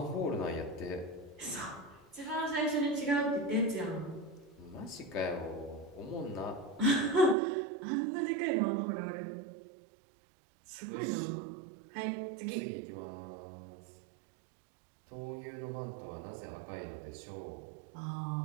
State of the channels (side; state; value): left; drops out; at 7.4 s